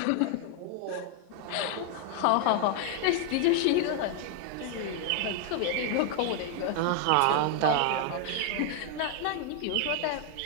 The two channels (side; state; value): both; different; correlation 0.00